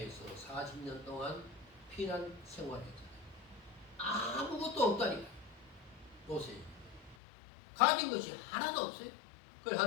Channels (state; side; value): drops out; right; at 7.2 s